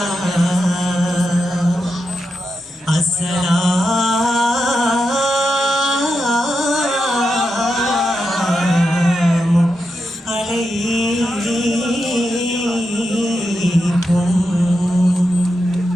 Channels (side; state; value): both; normal; correlation 0.87